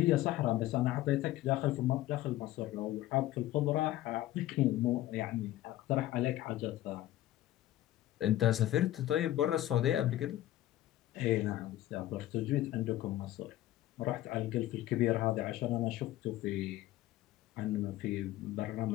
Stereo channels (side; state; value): right; quieter; 14.7 dB